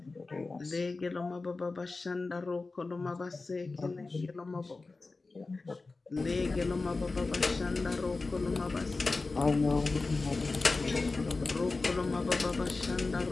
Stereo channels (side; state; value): right; quieter; 3.7 dB